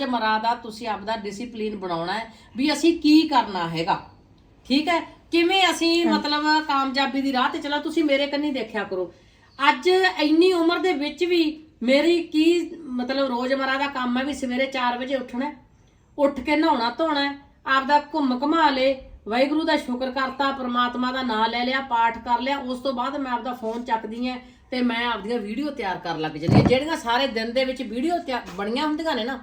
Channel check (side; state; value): both; identical; correlation 1.00